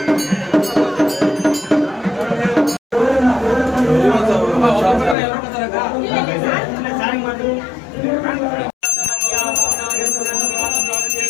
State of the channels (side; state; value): right; drops out; at 5.2 s